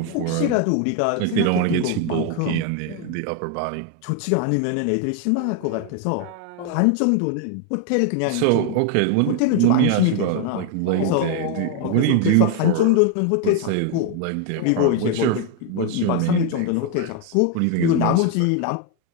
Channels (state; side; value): different; both; correlation 0.01